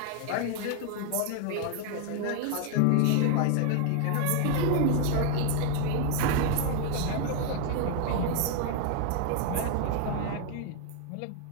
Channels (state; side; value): different; both; correlation 0.00